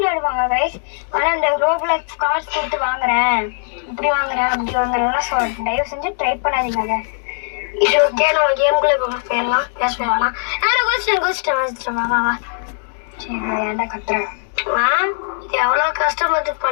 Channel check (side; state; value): right; silent; digital silence